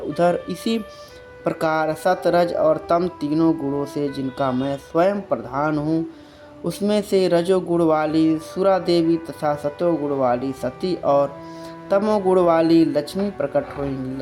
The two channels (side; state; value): both; identical; correlation 1.00